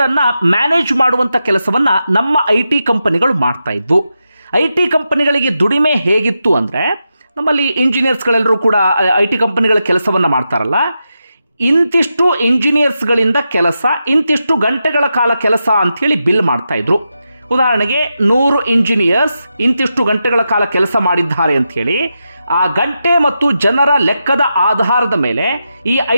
ಮ್ಯಾನೇಜ್ ಮಾಡುವಂಥ ಕೆಲಸವನ್ನು ನಮ್ಮ ಐ ಟಿ ಕಂಪನಿಗಳು ಮಾಡ್ತಾ ಇದ್ವು. ಐ ಟಿ ಕಂಪನಿಗಳಿಗೆ ದುಡಿಮೆ ಹೇಗಿತ್ತು ಅಂದರೆ, ನಮ್ಮಲ್ಲಿ ಇಂಜಿನಿಯರ್ಸ್ಗಳೆಲ್ಲರೂ ಕೂಡ ಐ ಟಿ ಕಂಪನಿಗಳ ಕೆಲಸವನ್ನು ಮಾಡ್ತಾರಲ್ಲ, ಇಂತಿಷ್ಟು ಇಂಜಿನಿಯರ್ಸ್ಗಳಿಂದ ಕೆಲಸ, ಇಂತಿಷ್ಟು ಗಂಟೆಗಳ ಕಾಲ ಕೆಲಸ ಅಂಥೇಳಿ ಬಿಲ್ ಮಾಡ್ತಾಯಿದ್ರು. ಉದಾಹರಣೆಗೆ 100 ಇಂಜಿನಿಯರ್ಸ್ ಇಂತಿಷ್ಟು ಗಂಟೆಗಳ ಕಾಲ ಕೆಲಸ ಮಾಡಿದ್ದಾರೆ ಅಂಥೇಳಿ ಆ ಗಂಟೆ ಮತ್ತು ಜನರ ಲೆಕ್ಕದ ಆಧಾರದ ಮೇಲೆ ಈ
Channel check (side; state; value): both; inverted; correlation -0.88